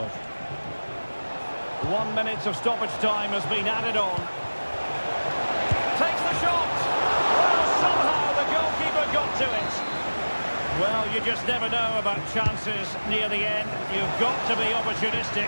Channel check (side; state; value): both; inverted; correlation -1.00